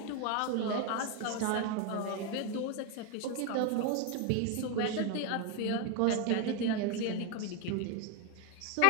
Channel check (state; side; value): different; both; correlation 0.02